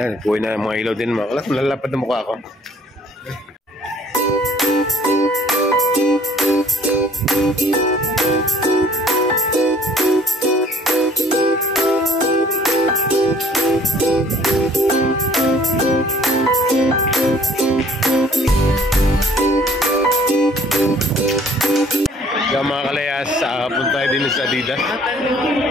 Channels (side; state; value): both; normal; correlation 0.57